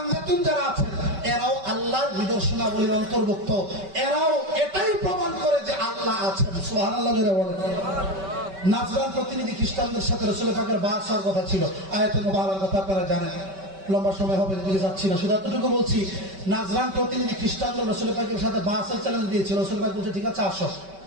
যারা আছেন, এরাও আল্লাহর নিদর্শনাবলীর অন্তর্ভুক্ত। এরাও এটাই প্রমাণ করে যে আল্লাহ আছেন। সুবহানাল্লাহ জোরে বলেন। নাজরান প্রতিনিধি খ্রিস্টানদের সাথে রাসূল পাকের বাস হওয়ার কথা ছিল, আয়াতে মুবারকার কথা আপনারা জানেন, লম্বা সময় হবে দিকে যাচ্ছি না, শুধু এতটুকু বলছি। নাজরান প্রতিনিধি খ্রিস্টানদের রাসূল পাকের সাথে বাসের চ্যালেঞ্জ দিয়েছিল। রাসূল পাক বলছে ঠিক আছে আসো।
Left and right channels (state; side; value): late; left; 5.2 ms